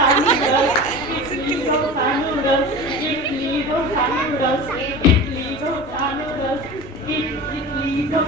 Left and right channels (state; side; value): noise; right; rumble, 21 dB below the sound